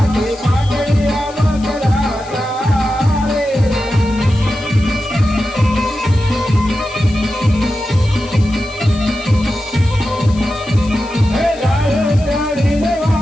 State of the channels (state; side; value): noise; left; hiss, 20 dB below the sound